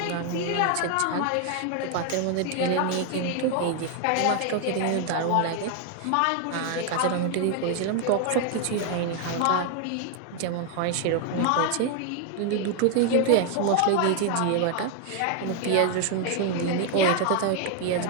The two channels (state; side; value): different; both; correlation 0.00